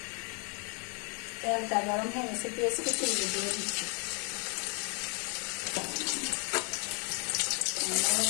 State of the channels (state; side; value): quieter; right; 37.7 dB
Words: তেলটা গরম হয়ে গেছে, পেঁয়াজ কুচি দিয়ে দিচ্ছি।